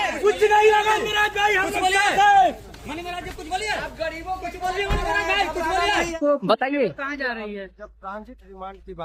कुछ नहीं लगा मेरा भाई, हम सब साथ हैं। मणि महाराज जी कुछ बोलिए। आप गरीबों कुछ बोलिए, मणि महाराज भाई कुछ बोलिए। बताइए कहाँ जा रही है? जब ट्रांजिट रिमांड की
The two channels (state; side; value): identical; both; correlation 1.00